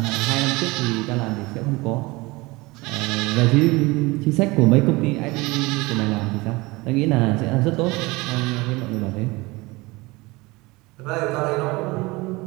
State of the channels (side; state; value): left; quieter; 22.9 dB